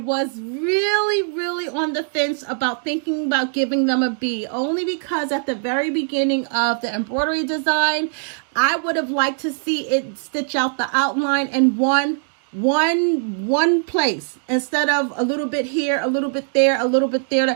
really on the fence about thinking about giving them a B, only because at the very beginning of the embroidery design, I would have liked to see it stitch out the outline in one place instead of a little bit here, a little bit there, a little bit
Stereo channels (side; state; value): left; silent; 63 dB below the other